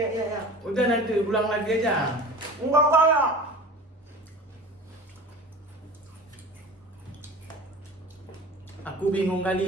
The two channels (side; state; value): both; normal; correlation 0.38